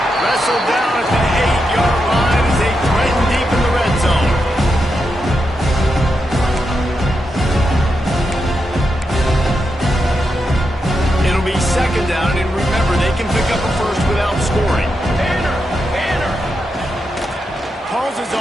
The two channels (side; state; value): both; normal; correlation 0.86